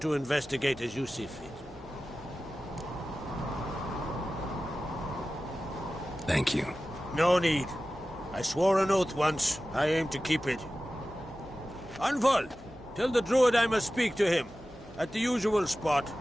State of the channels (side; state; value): right; noise; hum, 23 dB below the sound